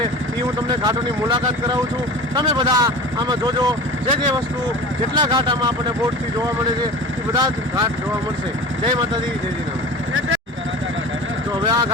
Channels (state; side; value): normal; both; correlation 0.35